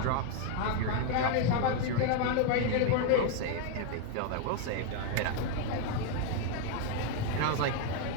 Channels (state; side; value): different; both; correlation 0.01